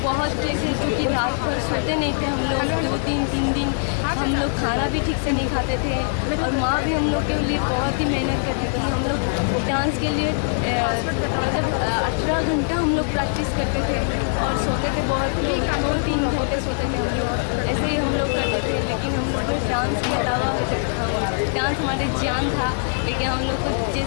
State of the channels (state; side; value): silent; right; digital silence